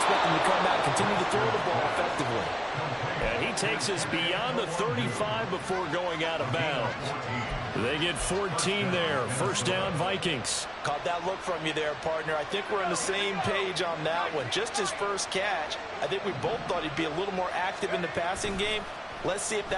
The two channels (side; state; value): both; identical; correlation 1.00